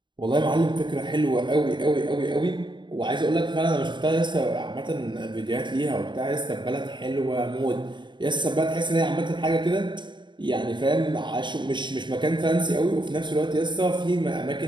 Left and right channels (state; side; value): late; left; 0.22 ms